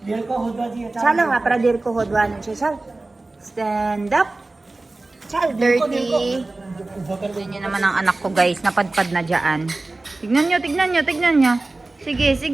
Chalo, ha, para Dirko hodwanan siya, chal. Stand up. Chal, dirty. Tignan nyo naman ang anak ko guys. Napadpad na dyan. Tignan nyo. Sige.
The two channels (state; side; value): quieter; left; 3.1 dB